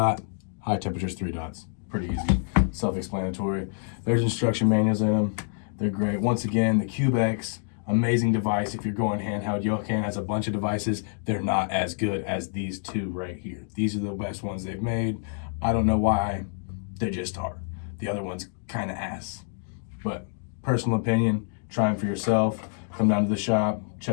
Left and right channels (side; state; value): right; silent; digital silence